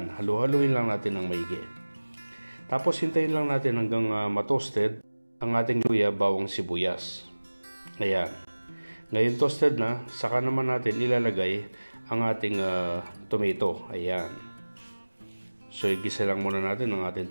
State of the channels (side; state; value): both; inverted; correlation -1.00